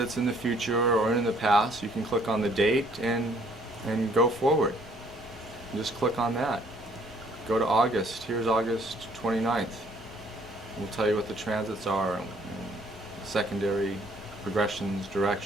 in the future or in the past, you can click on the date and go forward. Just click on that. Go to August. Here's August 29th. We'll tell you what the transits are, and secondary progressions,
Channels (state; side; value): normal; both; correlation 0.62